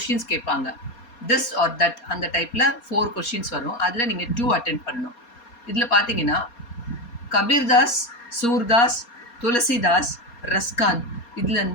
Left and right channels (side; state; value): right; late; 4.3 ms